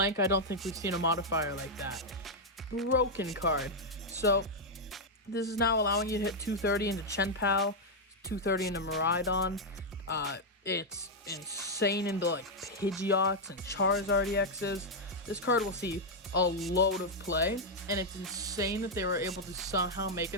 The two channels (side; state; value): both; normal; correlation -0.01